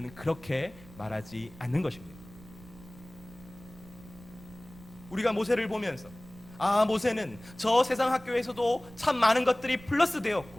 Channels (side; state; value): right; noise; rumble, 20 dB below the sound